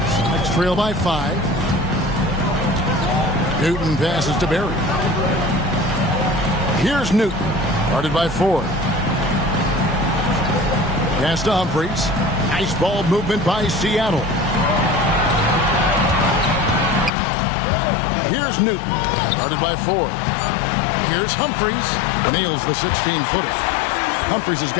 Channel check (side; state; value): right; drops out; at 17.1 s